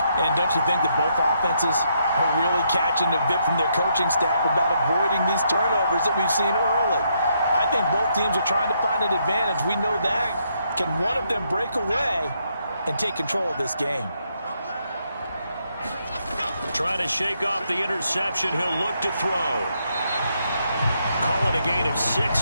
And don't you think that both offenses are really catching a bit from their coaching staff about avoiding these turnovers that we've seen early? I think both teams are trying to find an advantage. We know that. Can one of them break away and take control of this game? Trying to shake off the interception. He'll look to throw. Call it a gain of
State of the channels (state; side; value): inverted; both; correlation -0.76